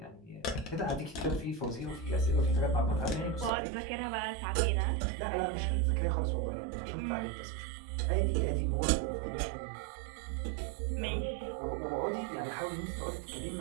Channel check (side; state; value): left; drops out; at 3.5 s